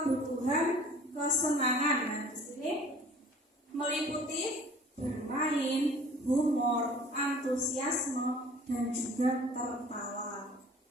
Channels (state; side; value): normal; both; correlation 0.49